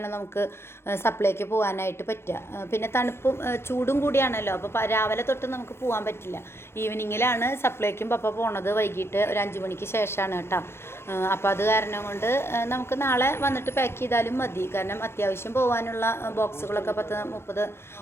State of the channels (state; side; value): late; right; 0.12 ms